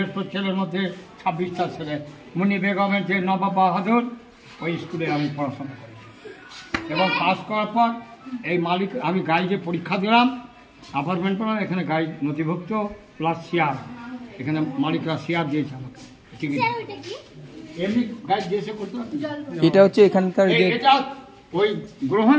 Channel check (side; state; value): both; identical; correlation 1.00